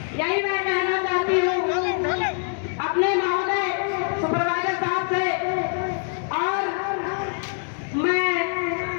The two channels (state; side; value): silent; right; 57 dB below the other